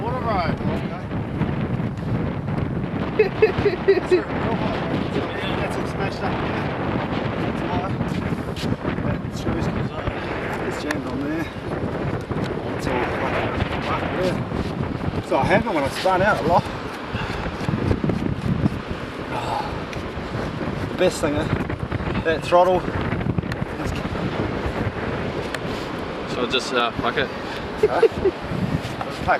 bro. That's all smashed up. That's high. That screws comes up. It's jammed on there. It's all fucked there. So I happened when I spun out a lot. The best thing, that throttle. So just fuck it. Let's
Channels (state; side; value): identical; both; correlation 1.00